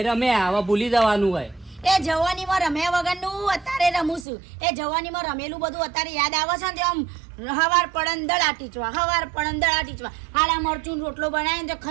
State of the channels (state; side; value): drops out; left; at 4.2 s